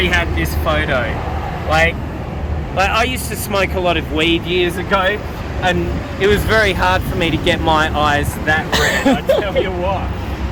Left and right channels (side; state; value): both; identical; correlation 1.00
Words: had this photo? Like I used to smoke a lot of weed years ago, and it was very hard for me to get my eyes that red. I tell you what,